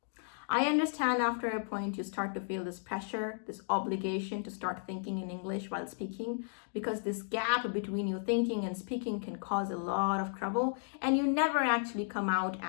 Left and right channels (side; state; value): right; silent; digital silence